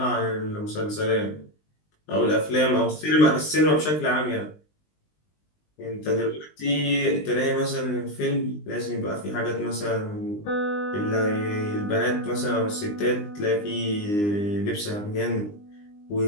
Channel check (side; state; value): right; late; 20 ms